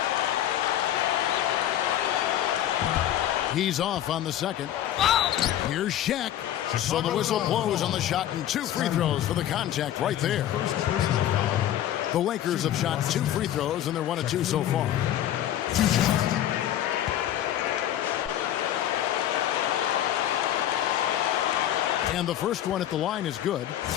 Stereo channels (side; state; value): right; quieter; 11.9 dB